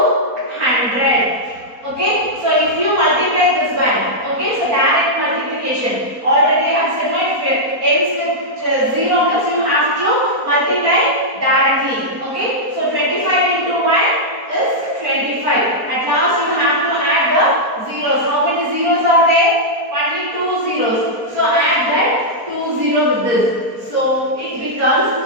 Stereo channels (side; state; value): left; late; 4.3 ms